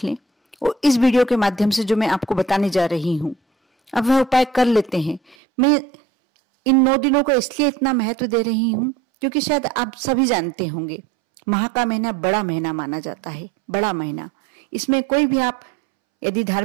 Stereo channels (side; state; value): left; drops out; at 5.4 s